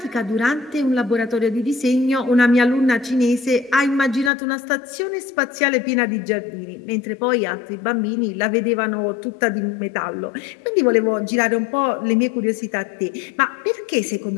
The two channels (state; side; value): drops out; right; at 4.3 s